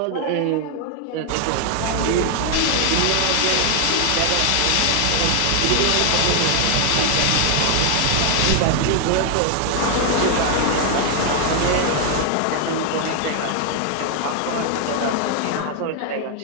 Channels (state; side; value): different; both; correlation 0.00